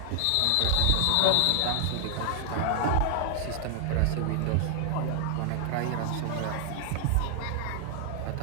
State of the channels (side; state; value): both; different; correlation 0.00